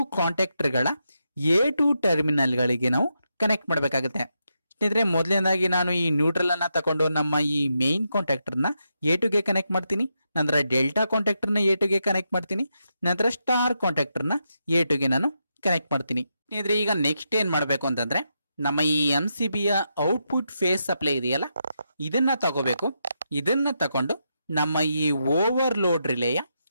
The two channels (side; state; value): both; inverted; correlation -0.84